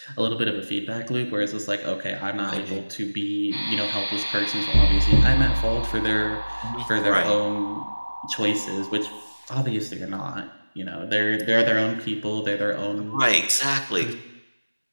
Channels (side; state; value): both; inverted; correlation -1.00